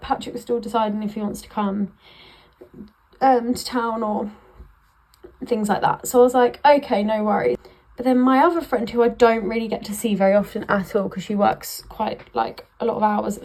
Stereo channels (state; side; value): identical; both; correlation 1.00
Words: Patrick was still deciding if he wants to come to town or things like that. So I was like, okay, no worries. But then my other friend, who I don't really get to see very often at all because she works quite like a lot of hours at